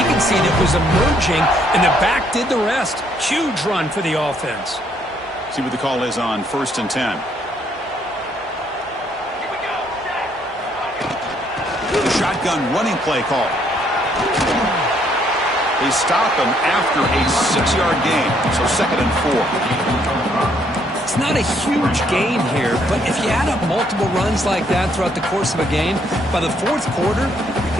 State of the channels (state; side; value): normal; both; correlation 0.69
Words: that was emerging, and the back did the rest. Huge run for the offense. See what the call is on 1st and 10. The shotgun running play call. They stop him after a 6-yard gain, so 2nd and 4. It's not a huge gain here, but if you add up multiple runs like that throughout the course of a game, by the 4th quarter, you're